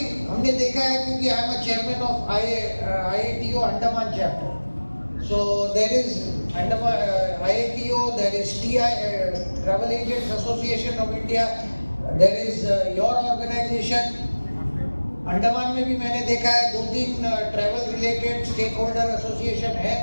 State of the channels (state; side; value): inverted; both; correlation -1.00